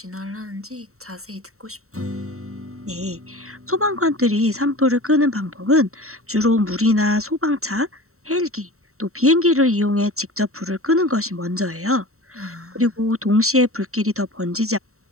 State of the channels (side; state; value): left; late; 0.63 ms